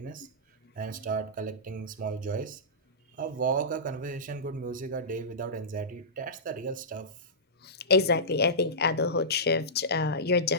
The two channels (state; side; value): normal; both; correlation -0.17